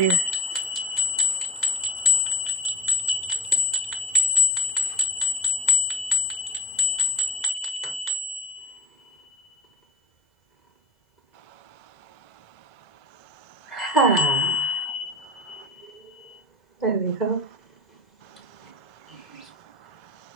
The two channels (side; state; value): right; late; 2.0 ms